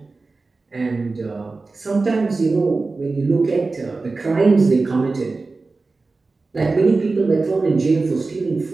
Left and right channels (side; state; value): left; quieter; 3.7 dB